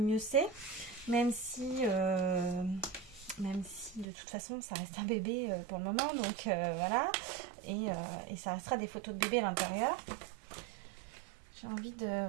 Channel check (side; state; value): left; drops out; at 4.0 s